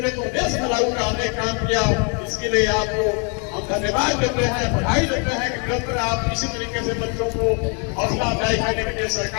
प्रदेश में लागू कराने का काम किया। इसके लिए आपको हम धन्यवाद देते हैं, बधाई देते हैं कि निरंतर आप इसी तरीके से बच्चों को हौसला अफजाई करने के लिए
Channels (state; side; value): quieter; right; 36.6 dB